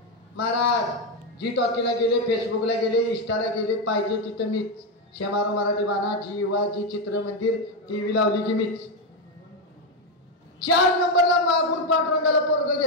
महाराज जी टॉकीला गेले, फेसबुकला गेले, इंस्टाला गेले, पाहिजे तिथं मीच. शेमारो मराठी बाणा, जी युवा, जी चित्र मंदिर, टीव्ही लावली की मीच. 4 नंबरला मागून पांडुरंगाला पोरग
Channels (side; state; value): both; normal; correlation 0.07